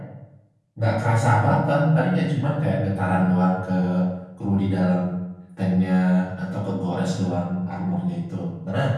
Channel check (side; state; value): both; identical; correlation 1.00